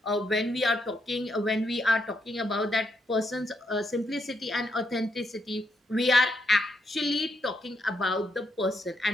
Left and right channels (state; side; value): normal; both; correlation 0.78